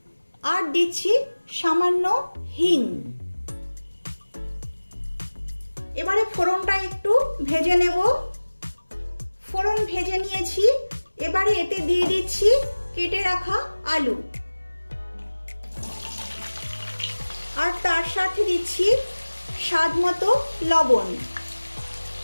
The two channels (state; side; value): inverted; both; correlation -1.00